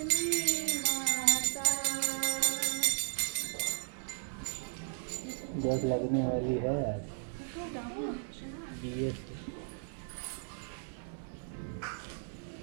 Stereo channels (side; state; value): left; silent; 54 dB below the other